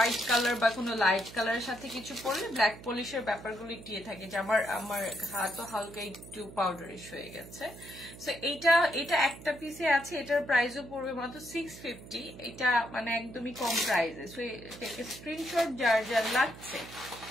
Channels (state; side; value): noise; right; hum, 16 dB below the sound